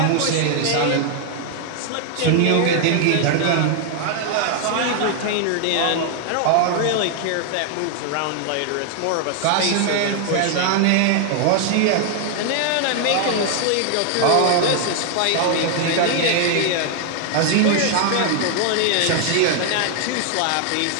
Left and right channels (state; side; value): different; both; correlation 0.00